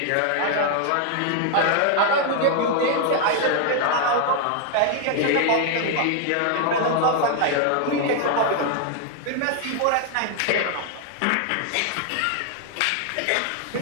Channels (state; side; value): different; both; correlation 0.00